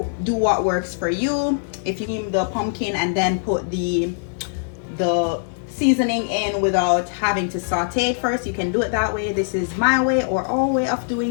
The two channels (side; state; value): right; silent; digital silence